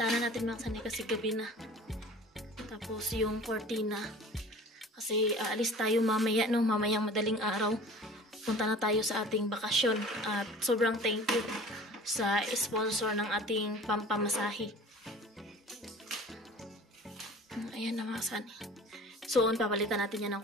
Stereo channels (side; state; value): both; normal; correlation 0.43